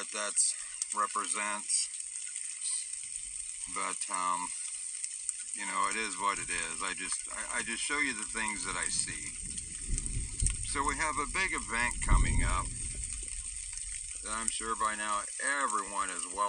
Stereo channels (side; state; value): both; identical; correlation 1.00